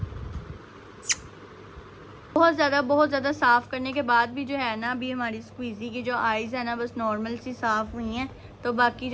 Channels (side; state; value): both; identical; correlation 1.00